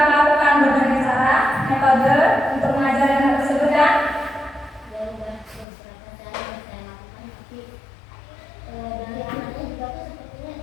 melakukan berbagai cara, metode untuk mengajari anak tersebut kan? Ya udah beberapa cara yang saya lakukan tapi dari anaknya juga tuh sepertinya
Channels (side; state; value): right; drops out; at 5.7 s